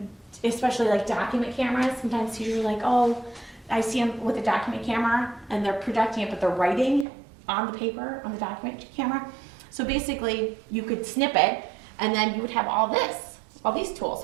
especially like document cameras, sometimes teachers are like, oh, I see them with a document camera and they're projecting it, but they're writing on the paper, on the document camera. So basically you could snip it and then you would have all these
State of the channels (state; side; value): drops out; left; at 7.1 s